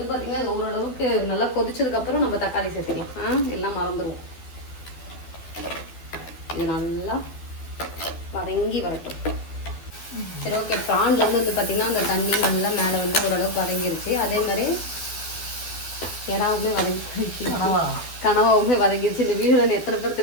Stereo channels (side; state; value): right; late; 12 ms